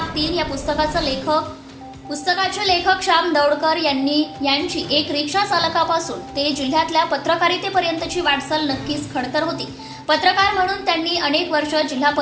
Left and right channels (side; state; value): both; identical; correlation 1.00